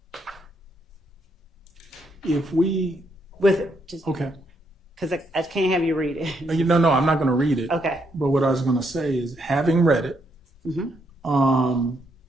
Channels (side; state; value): both; normal; correlation 0.76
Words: If we, With just okay. because I can't have you read it. No, I'm not going to read it. Okay. But what I was going to say is, having read it, Mhm.